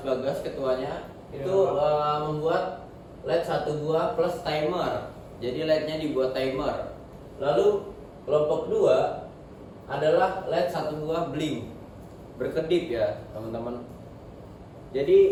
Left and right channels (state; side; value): identical; both; correlation 1.00